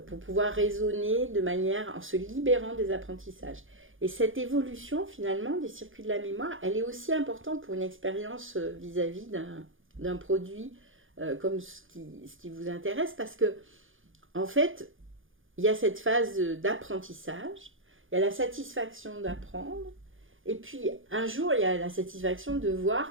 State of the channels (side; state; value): left; late; 0.58 ms